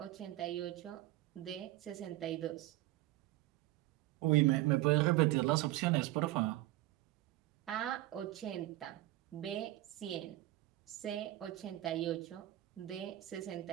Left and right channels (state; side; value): quieter; left; 16.2 dB